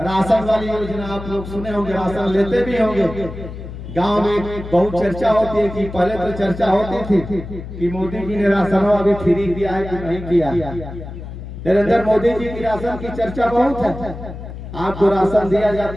राशन वाली योजना आप लोग सुने होंगे, राशन लेते भी होंगे। गांव में बहुत चर्चा होती है कि पहले तो चर्चा होती थी कि मोदी जी ने राशन अभी फ्री दिया है कि नहीं किया। नरेंद्र मोदी जी की राशन की चर्चा बहुत है, आपको राशन दिया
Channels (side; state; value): left; noise; hum, 11 dB below the sound